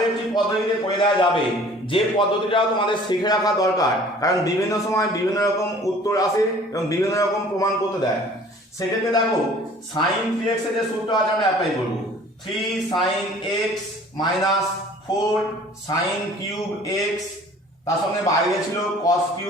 একটি পদ্ধতিতে করে দেওয়া যাবে, যে পদ্ধতিটাও তোমাদের শিখে রাখা দরকার, কারণ বিভিন্ন সময় বিভিন্ন রকম উত্তর আসে এবং বিভিন্ন রকম প্রমাণ করতে দেয়। সেক্ষেত্রে দেখো sin 3x এর যে সূত্র আছে আমরা অ্যাপ্লাই করব, 3 sin x minus 4 sin cube x, তার সঙ্গে বাইরে ছিল cos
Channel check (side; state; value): both; normal; correlation 0.50